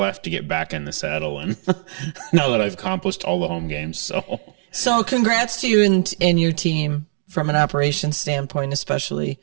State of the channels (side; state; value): left; silent; digital silence